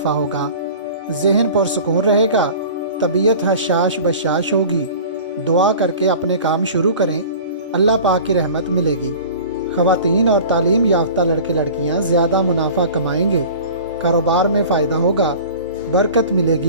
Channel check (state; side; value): inverted; both; correlation -0.41